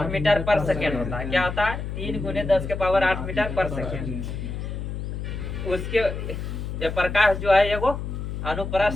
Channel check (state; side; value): noise; left; hum, 5 dB below the sound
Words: मीटर पर सेकेंड होता है। क्या होता है, 3 × 10⁸ मीटर पर सेकेंड। उसके ये प्रकाश जो है एगो